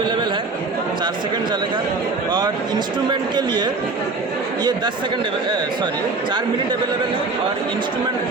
है, 4 सेकंड चलेगा। और इंस्ट्रूमेंट के लिए ये 4 मिनट अवेलेबल है। और इंस्ट्रूमेंट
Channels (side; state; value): left; quieter; 3.7 dB